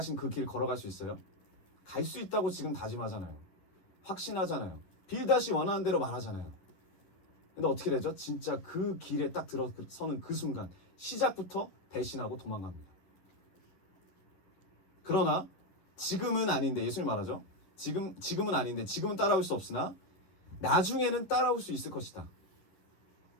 그 길 걸어갈 수 있어요? 갈 수 있다고 지금 다짐하잖아요. 확신하잖아요. 빌닷이 원하는 대로 말하잖아요. 근데 어떻게 되죠? 진짜 그 길에 딱 들어서는 그 순간 시작부터 배신하고 도망갑니다. 그러나 지금은 아닌데, 예수님 말하죠. 지금은 아닌데, 지금은 따라올 수 없으나 나중에는 따라올 수 있을 것이다.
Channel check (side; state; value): right; late; 11 ms